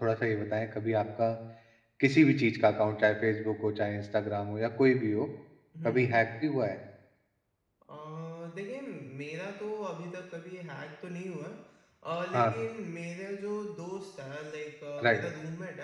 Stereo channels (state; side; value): identical; both; correlation 1.00